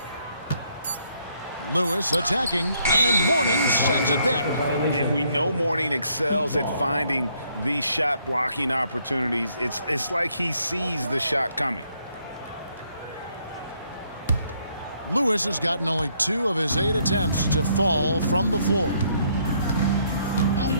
Lewis attacking, and Mourning sends it back. And we know Mourning excels at finding these shot blocking opportunities. It's like he sees the shot coming. Lewis has gotten only 2 of his 8 attempts to fall from the floor.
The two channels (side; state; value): both; inverted; correlation -0.70